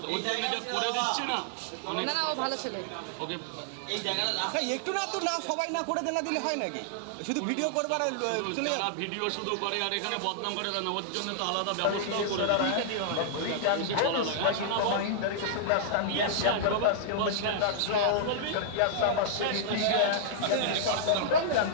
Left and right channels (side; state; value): both; different; correlation -0.01